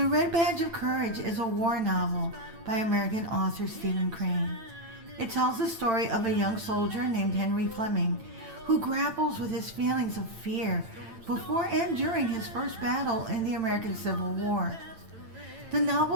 Red Badge of Courage is a war novel by American author Stephen Crane. It tells the story of a young soldier named Henry Fleming who grapples with his feelings of fear before and during his first battle in the American Civil War. The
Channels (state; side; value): late; left; 8.9 ms